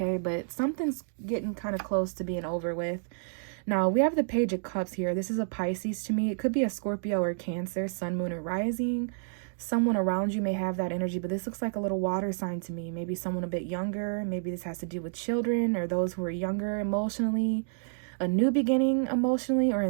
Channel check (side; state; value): left; silent; digital silence